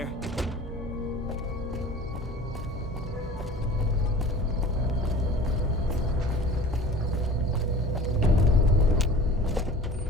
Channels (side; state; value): both; normal; correlation 0.41